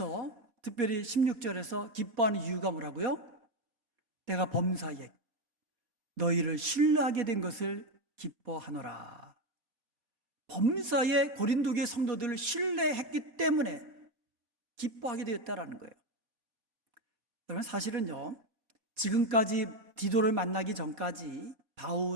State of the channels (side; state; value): left; late; 4.2 ms